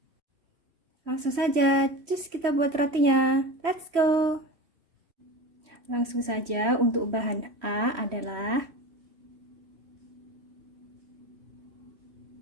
Langsung saja, cus kita buat rotinya. Let's go! Langsung saja untuk bahan A adalah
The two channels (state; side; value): late; left; 3.1 ms